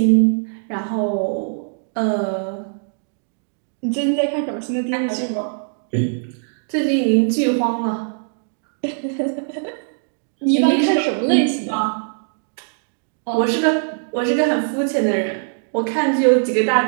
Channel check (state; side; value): silent; left; digital silence